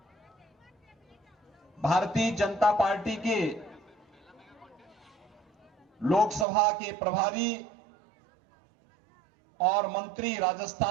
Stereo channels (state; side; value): drops out; left; at 6.5 s